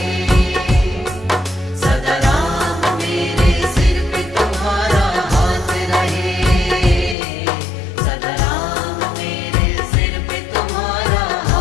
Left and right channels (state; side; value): drops out; right; at 7.2 s